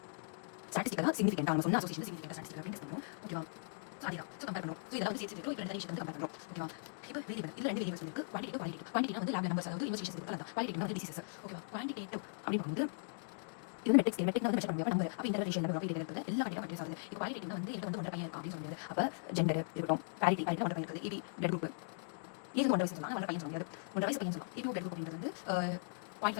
ஸ்டாட்டிஸ்டிக்கலாக சிக்னிஃபிகன்ட் நம்ம சொன்ன அசோசியேஷன் சிக்னிஃபிகன்ட் ஸ்டாட்டிஸ்டிக்கல் அப்படின்னு டெஸ்ட் பண்ணுறோம் ஓகேவா. ஸோ அதுதான் ஸோ கம்பேர் பண்ணுறோம். ஸோ இதெல்லாம் வந்து சேர்த்து இப்போ ரெண்டு வந்து கம்பேர் பண்ணுறோம் ஓகேவா. இப்போ வேரியபிள் இதில் ரெண்டு வேரியபிள்ஸ் இருக்குது குவான்டிட்டி வந்து லேப் நம்பர்ஸ் அதாவது இன்வெஸ்டிகேஷன் இருக்குது அதான் குவாலிட்டி வந்து டிசீசஸ் ஓகேவா. குவான்டிடேட்டிவ் அப்படின்னு வந்து இது மெட்ரிக்ஸ் வந்து மெஷர் பண்ணுவாங்க நம்பர் அப்போ இன்டர்நேஷனல் நம்பர் அப்படி இருக்குது எல்லா டேட்டா மெட்ரிக்ஸ் ஆகுது. இப்போ குவாலிட்டி வந்து எனக்கு வந்து ஒன்றரை பையன் இருக்கும் அப்படின்னு சொல்ல முடியாது. அப்போ ஜெண்டர் இருக்கட்டும் பேரிட்டி ஒன்றரை பையன் இருக்குது இபி பிளட் குரூப் இது ஒன்றரை வயசு சொன்னாங்க ஒன்றரை பையன் சொல்ல முடியாது ஒன்றரை வயசு பையன் சொல்லலாம். இப்போ பிளட் குரூப் அப்படின்றது வந்து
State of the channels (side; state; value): right; silent; digital silence